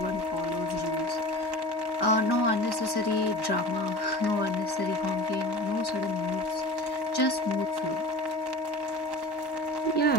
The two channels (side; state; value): right; late; 1.1 ms